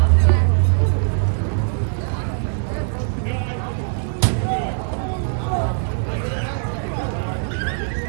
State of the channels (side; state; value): left; silent; 63 dB below the other